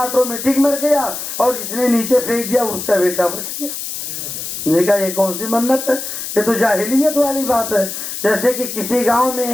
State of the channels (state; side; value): noise; left; hiss, 6 dB below the sound